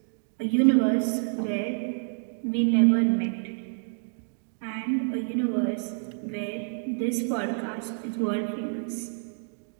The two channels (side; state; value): left; silent; 59 dB below the other